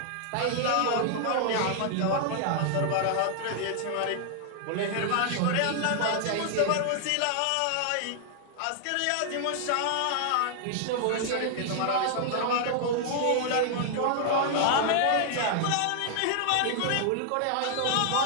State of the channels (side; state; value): both; different; correlation 0.00